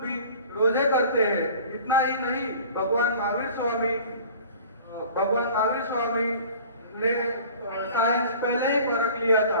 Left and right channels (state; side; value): inverted; both; correlation -0.45